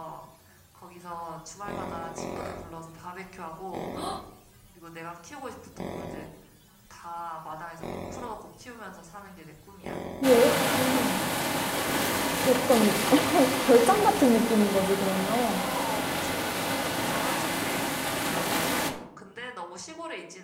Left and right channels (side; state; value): both; identical; correlation 1.00